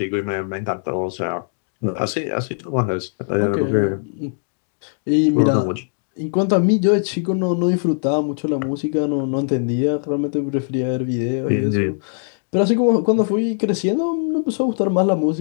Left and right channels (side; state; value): right; silent; digital silence